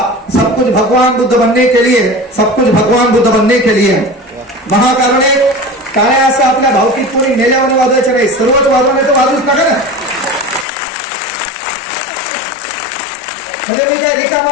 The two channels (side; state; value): right; drops out; at 10.7 s